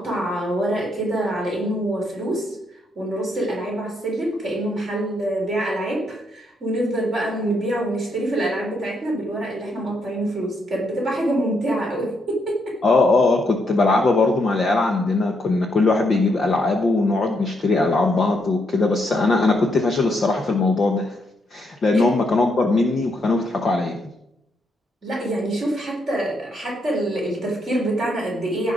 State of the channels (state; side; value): normal; both; correlation 0.77